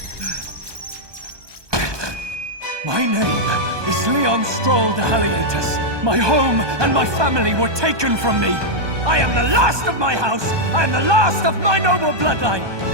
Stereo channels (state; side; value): late; left; 1.2 ms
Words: My name is Leon Stroll de Halietus. My home and my family were taken from me. I am the last of my house. I am the last of my noble bloodline.